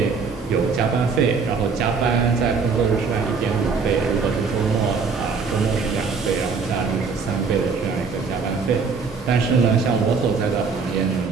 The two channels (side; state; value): left; quieter; 5.1 dB